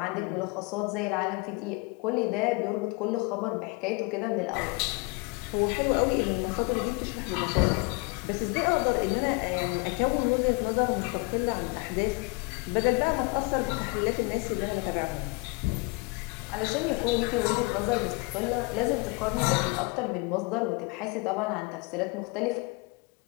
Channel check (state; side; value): quieter; right; 28.0 dB